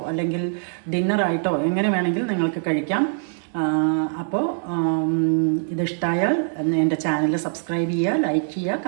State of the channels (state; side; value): silent; left; digital silence